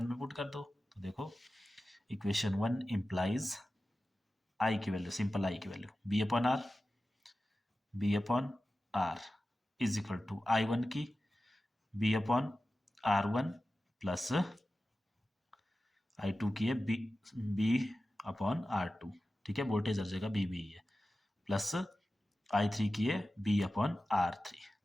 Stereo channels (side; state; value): both; normal; correlation 0.94